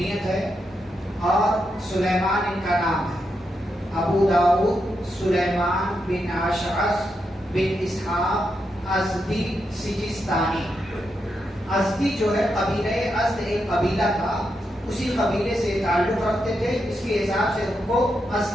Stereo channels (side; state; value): both; normal; correlation 0.84